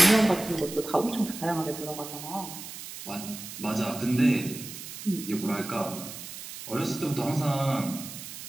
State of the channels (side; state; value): right; noise; hiss, 11 dB below the sound